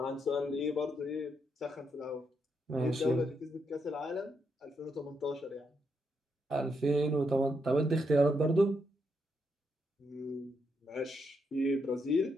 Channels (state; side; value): normal; both; correlation 0.80